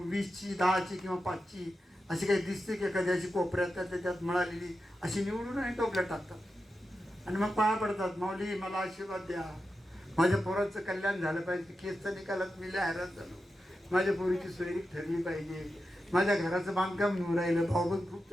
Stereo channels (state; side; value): normal; both; correlation 0.90